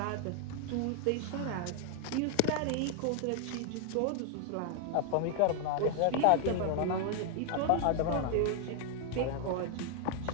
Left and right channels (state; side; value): different; both; correlation 0.00